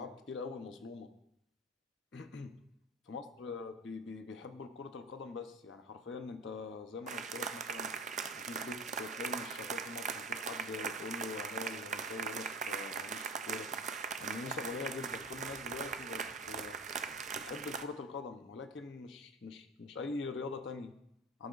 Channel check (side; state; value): both; normal; correlation 0.31